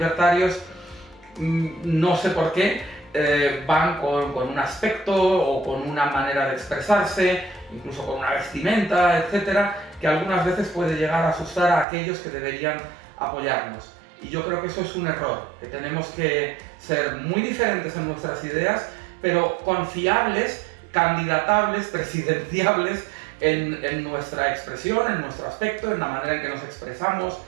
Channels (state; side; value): drops out; left; at 11.9 s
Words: no sé por qué, van con un aspecto o con una manera de expresarse, incluso con una vestimenta, etcétera, que algunas veces puede llegar a asustar a aquellos que deberían apoyarnos. Y yo creo que eso es un error, que tenemos que ser muy diferentes en nuestras ideas, pero confiables, candidatables, presidenciables en nuestra expresión, en nuestro aspecto, en la manera en que nos expresamos,